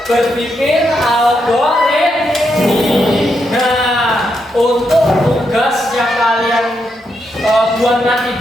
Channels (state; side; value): normal; both; correlation 0.81